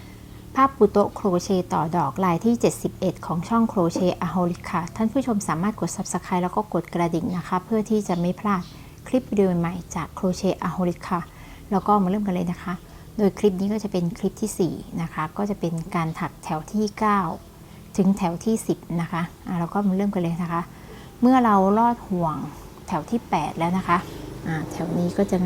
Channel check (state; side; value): identical; both; correlation 1.00